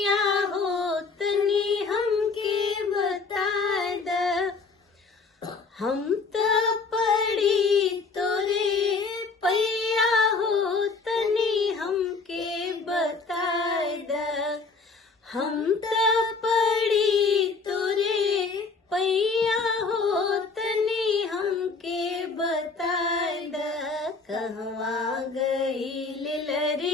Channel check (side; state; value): right; quieter; 4.3 dB